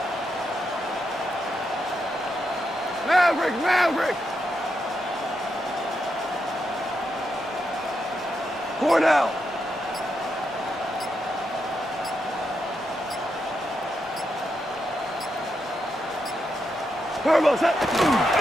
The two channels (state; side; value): normal; both; correlation 0.83